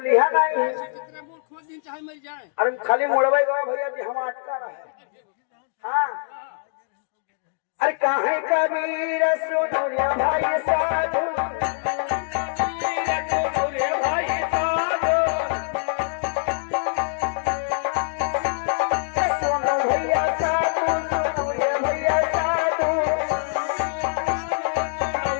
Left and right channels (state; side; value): silent; right; digital silence